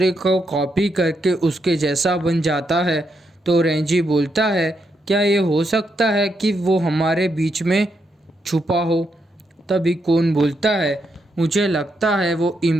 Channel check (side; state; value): both; normal; correlation 0.80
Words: को कॉपी करके उसके जैसा बन जाता है? तो रेंजी बोलता है, क्या ये हो सकता है कि वो हमारे बीच में छुपा हो? तभी कौन बोलता है, मुझे लगता है वो